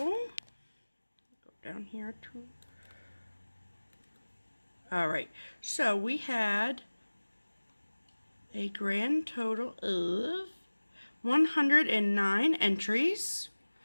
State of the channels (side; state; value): both; inverted; correlation -1.00